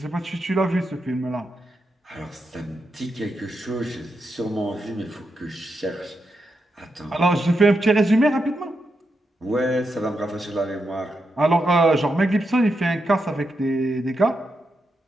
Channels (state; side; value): normal; both; correlation 0.85